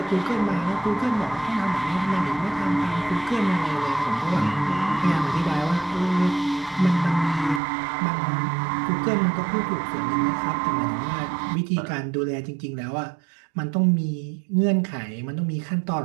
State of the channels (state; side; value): drops out; left; at 7.6 s